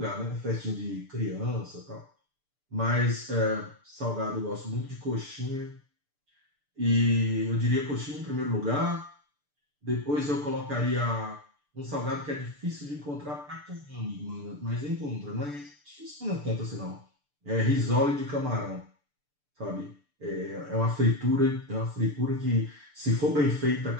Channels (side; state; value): left; late; 6.8 ms